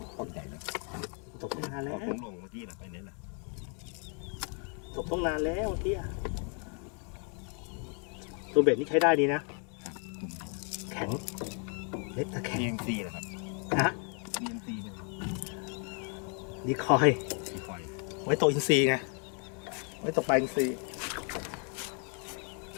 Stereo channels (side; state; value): right; quieter; 39.8 dB